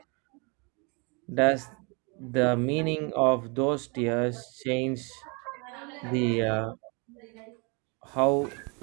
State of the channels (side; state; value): left; quieter; 31.7 dB